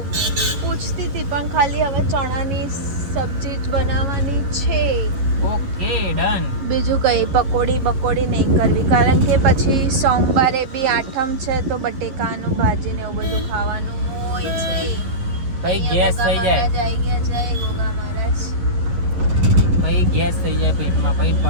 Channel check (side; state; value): left; late; 11 ms